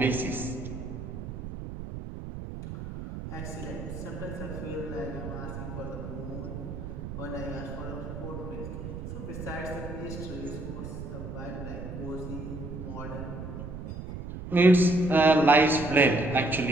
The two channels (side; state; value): right; noise; rumble, 8 dB below the sound